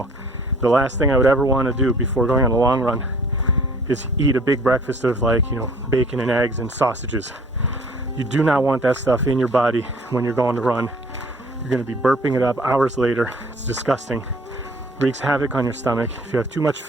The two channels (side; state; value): both; normal; correlation 0.54